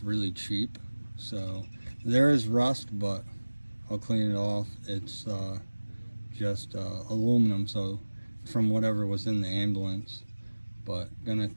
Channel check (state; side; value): inverted; both; correlation -1.00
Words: really cheap. So there is rust, but I'll clean it off. It's just aluminum, so from whatever was in the ambulance. But gonna